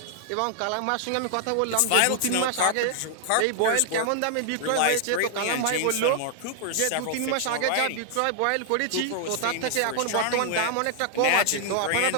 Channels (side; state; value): both; different; correlation 0.00